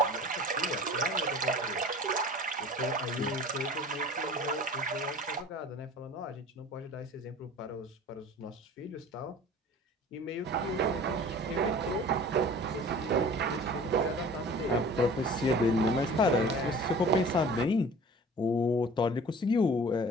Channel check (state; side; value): normal; both; correlation 0.44